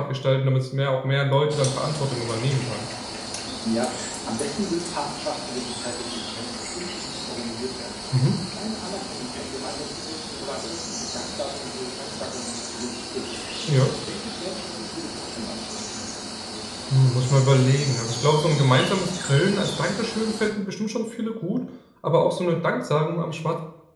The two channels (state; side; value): identical; both; correlation 1.00